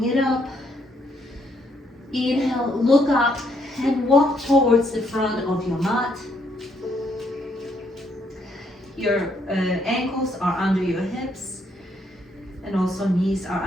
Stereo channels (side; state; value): both; normal; correlation 0.72